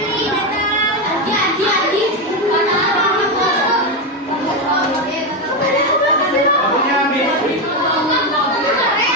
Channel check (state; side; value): normal; both; correlation 0.10